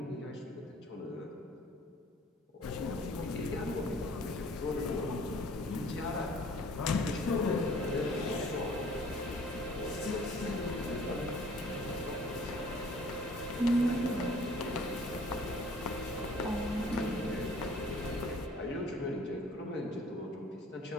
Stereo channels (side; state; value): both; normal; correlation 0.54